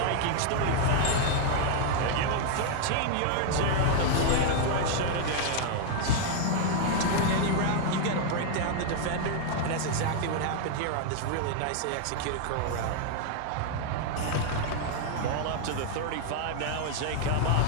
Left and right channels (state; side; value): different; both; correlation 0.00